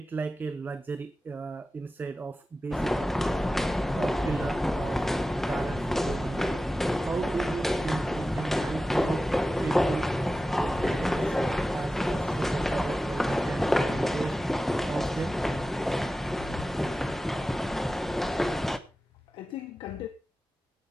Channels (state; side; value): normal; both; correlation 0.95